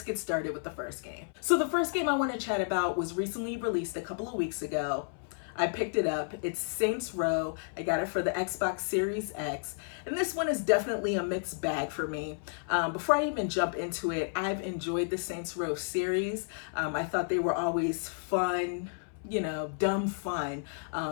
get started with the first game. So the first game I want to chat about was recently released a couple of weeks ago. I picked it up. It's Saints Row. I got it for the Xbox Series X. And this one is definitely a mixed bag for me. Before I even jump into it, I've enjoyed the Saints Row series. I thought they were always fun, you know, dumb fun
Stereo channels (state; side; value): silent; right; 57 dB below the other